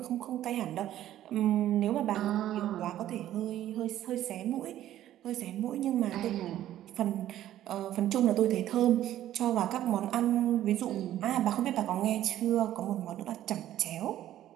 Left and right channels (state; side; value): quieter; left; 12.7 dB